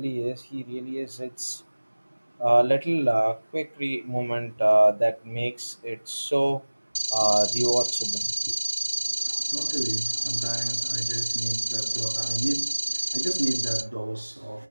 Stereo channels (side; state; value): both; inverted; correlation -1.00